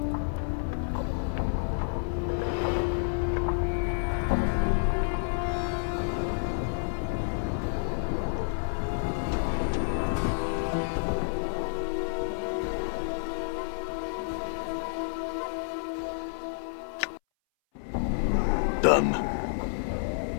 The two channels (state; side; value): silent; right; 58 dB below the other